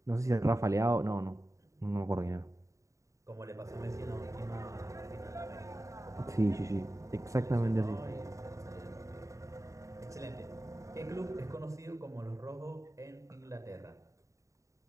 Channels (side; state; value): left; late; 0.15 ms